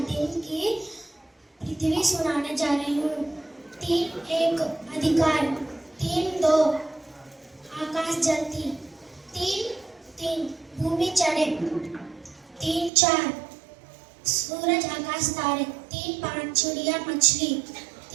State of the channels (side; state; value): left; drops out; at 12.9 s